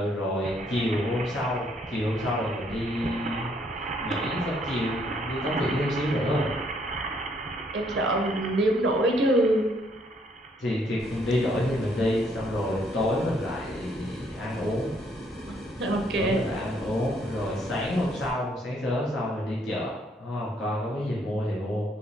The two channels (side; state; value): both; normal; correlation 0.68